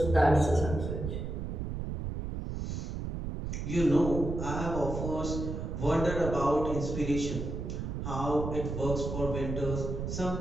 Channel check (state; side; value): noise; right; rumble, 4 dB below the sound